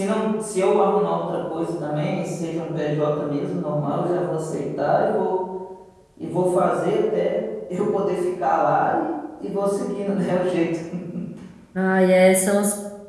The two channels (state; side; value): identical; both; correlation 1.00